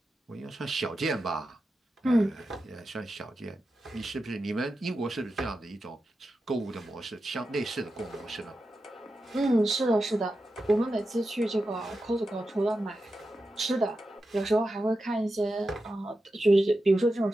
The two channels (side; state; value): both; normal; correlation 0.90